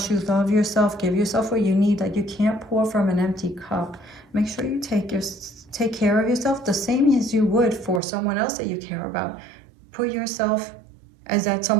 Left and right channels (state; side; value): drops out; left; at 8.0 s